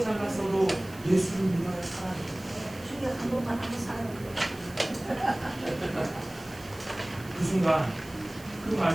잘났어도 예수를 믿어야 살아요. 주여 한 번만 하고 살아요. 그 순간 그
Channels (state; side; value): noise; right; hiss, 21 dB below the sound